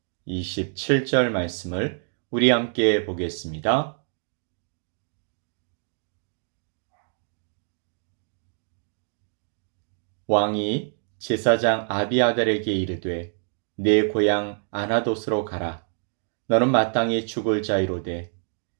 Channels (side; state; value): left; silent; digital silence